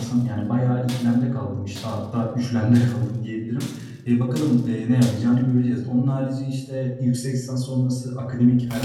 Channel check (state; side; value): identical; both; correlation 1.00